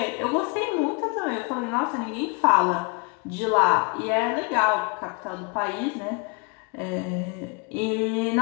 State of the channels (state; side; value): quieter; right; 31.6 dB